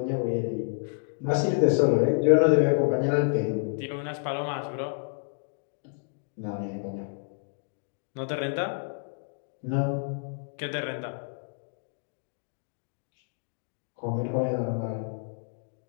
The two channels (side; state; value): right; silent; digital silence